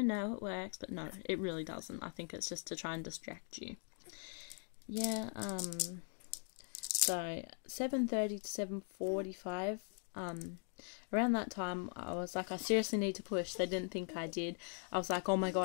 it works. But no, it really doesn't. I think it's just to try and distract you. Yeah, so 7:30 to 7:45, around that time, I was like, I seriously need to push. They didn't think I did. I was like, oh my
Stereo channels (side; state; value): right; silent; 51 dB below the other